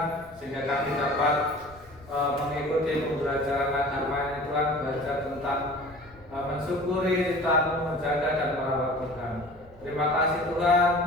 sehingga kami dapat mengikuti pembelajaran agama Tuhan, belajar tentang mensyukuri ciptaan, menjaga dan merawat Tuhan. Terima kasih Tuhan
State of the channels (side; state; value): left; noise; rumble, 24 dB below the sound